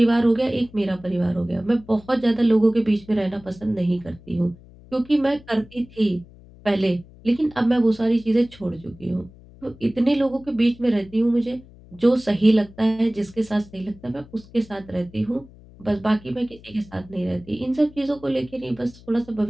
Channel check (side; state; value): left; noise; hum, 22 dB below the sound